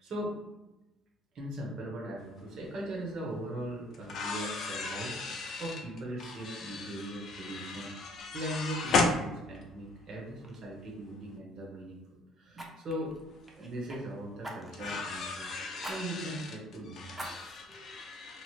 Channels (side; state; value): both; normal; correlation 0.58